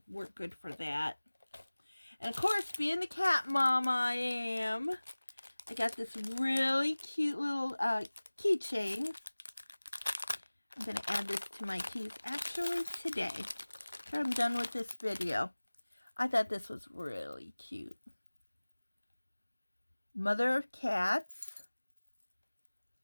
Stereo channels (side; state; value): both; inverted; correlation -1.00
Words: work good for that. And of course, being the cat mom I am, I got this really cute little keychain. I'm going to add this to my keys actually today, after I'm done with this video. I thought this was really cute. Mother of cats.